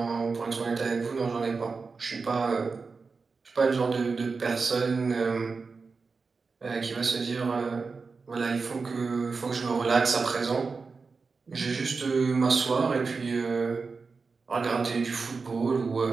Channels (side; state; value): left; quieter; 4.6 dB